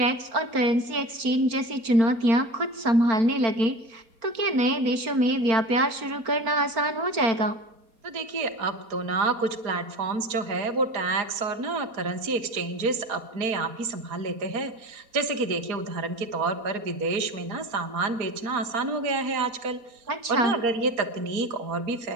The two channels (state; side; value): late; left; 4.3 ms